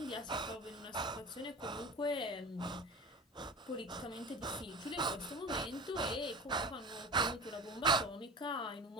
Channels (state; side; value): normal; both; correlation 0.32